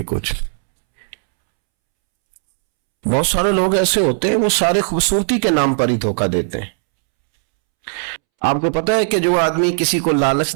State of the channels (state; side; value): silent; left; 68 dB below the other